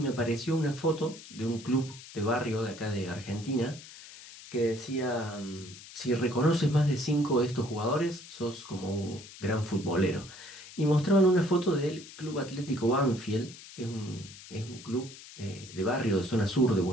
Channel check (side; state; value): left; noise; hiss, 17 dB below the sound